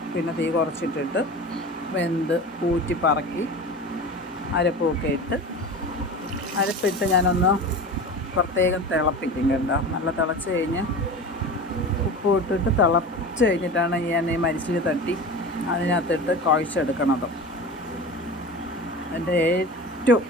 പിന്നെ തീ കുറച്ചിട്ടിട്ട് വെന്ത് ഊറ്റി പറക്കി അരപ്പൊക്കെ ഇട്ട് അരപ്പിട്ട് ഞാനൊന്ന് പ്രത്യേകം തിളപ്പിക്കും കേട്ടോ. നല്ല തിളച്ച് കഴിഞ്ഞ് ഉപ്പ് ഇട്ടിട്ട് തിളച്ച് കഴിഞ്ഞിട്ടാണ് ഞാൻ ഈ മരിച്ചിനി തട്ടി അതിനകത്തിട്ട് കുഴച്ചെടുക്കണത്. എൻ്റെ ഏറ്റവും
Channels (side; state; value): both; normal; correlation 0.32